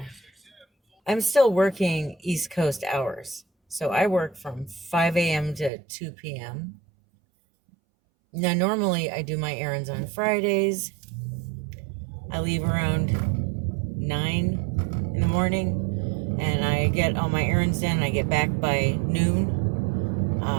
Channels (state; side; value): drops out; left; at 5.7 s